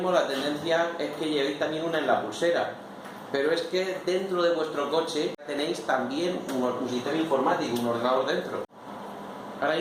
la tendencia es que llevéis también una en la pulsera. Pero es que dentro de vuestro coche tenéis también un sistema informático, un ordenador dentro. Ahora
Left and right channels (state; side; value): identical; both; correlation 1.00